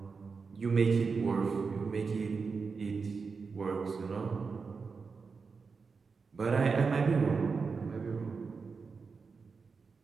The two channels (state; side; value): quieter; left; 5.0 dB